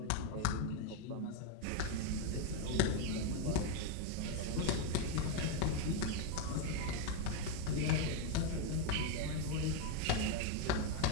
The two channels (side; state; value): both; different; correlation 0.01